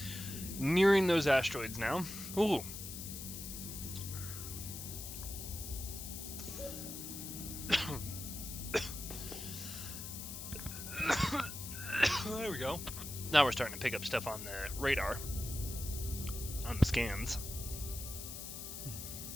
Nearing those asteroids now. Ooh. There we go. Now we're starting to pick up stuff on the radar, on the scans.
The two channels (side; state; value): left; noise; hiss, 8 dB below the sound